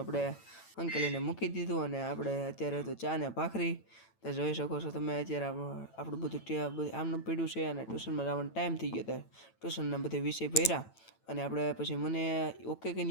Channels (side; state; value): right; late; 9.0 ms